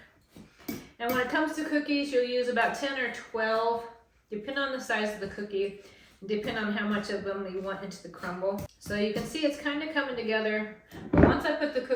And when it comes to cookies, you'll use about 10 or 12, depending on the size of the cookie, depending on how much of them you want into the crumble. So you can see it's kind of coming together. But once I put the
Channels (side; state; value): both; identical; correlation 1.00